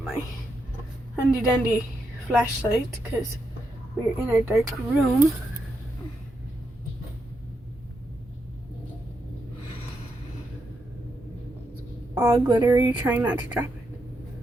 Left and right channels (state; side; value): normal; both; correlation 0.82